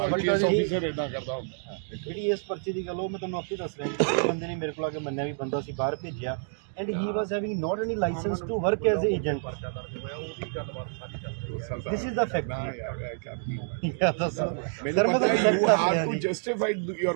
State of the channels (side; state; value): left; silent; digital silence